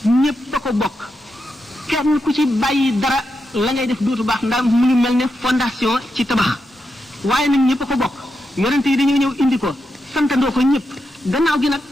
ñépp a ko bokk kenn ku ci bàyyi dara la ngay def dootu baax ndax mu ngi mel ne fondation ci tabax waaye nag ñépp a ko bokk yonent yi dañoo ñëw indi ko santandoo ko ñépp gannaaw gi nag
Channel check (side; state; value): both; normal; correlation 0.86